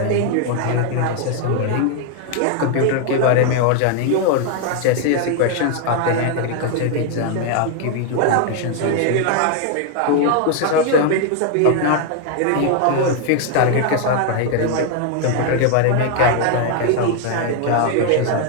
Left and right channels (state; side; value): different; both; correlation 0.00